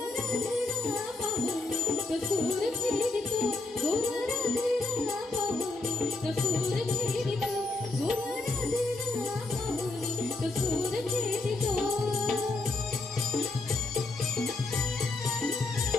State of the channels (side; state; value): right; quieter; 3.1 dB